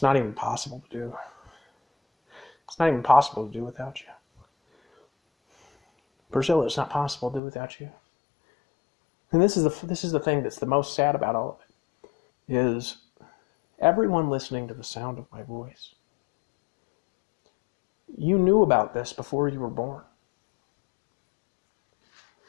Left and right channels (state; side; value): drops out; right; at 7.4 s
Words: not even possible to do. It's not even possible to do without you. Priscilla, it's not possible to do without you. And this is the thing that's the most sad about all of it, is everyone listening to the sound of my voice. You knew about this before you were born.